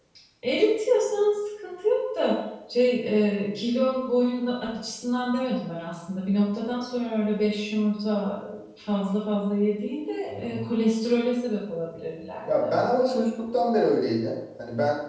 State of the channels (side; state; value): both; identical; correlation 1.00